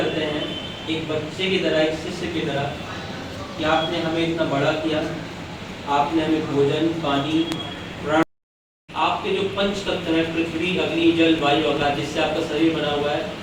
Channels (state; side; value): identical; both; correlation 1.00